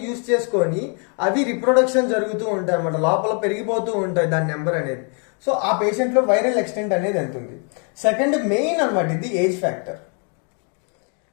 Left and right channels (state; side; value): quieter; right; 40.0 dB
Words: యూజ్ చేసుకొని అవి రిప్రొడక్షన్ జరుగుతూ ఉంటాయి అన్నమాట. లోపల పెరిగిపోతూ ఉంటాయి దాని నెంబర్ అనేది. సో ఆ పేషెంట్లో వైరల్ ఎక్స్టెంట్ అనేది ఎంత ఉంది. సెకండ్ మెయిన్ అనమాట ఇది ఏజ్ ఫ్యాక్టర్.